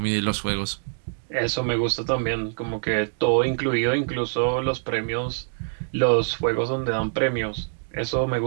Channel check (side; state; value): left; silent; digital silence